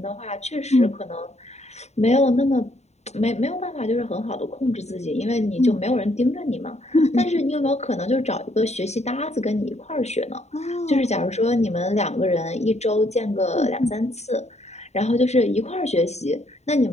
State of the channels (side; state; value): right; late; 0.32 ms